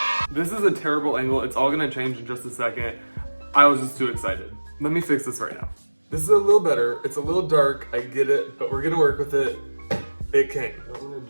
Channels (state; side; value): inverted; both; correlation -1.00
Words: This is a terrible angle. It's all gonna change in just a second. I was just too excited. Let me fix this right now. This is a little better. It's a little dark, I get it, but we're gonna work with it. It came. I don't wanna